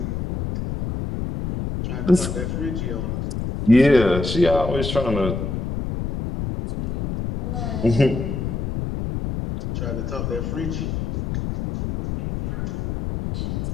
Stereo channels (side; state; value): left; noise; rumble, 3 dB below the sound